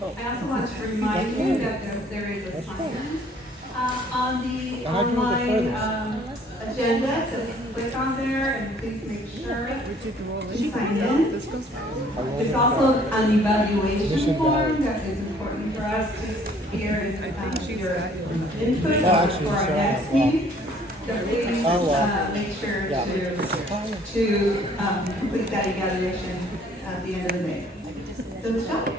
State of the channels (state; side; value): normal; both; correlation 0.58